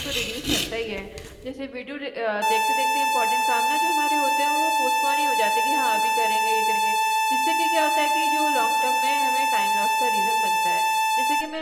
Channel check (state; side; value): identical; both; correlation 1.00